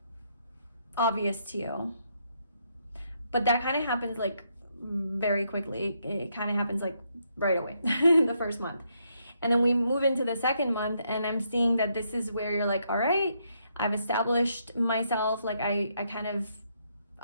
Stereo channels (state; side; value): inverted; both; correlation -0.76